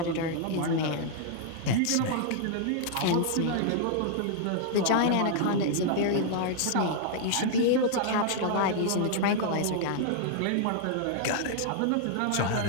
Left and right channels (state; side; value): different; both; correlation -0.01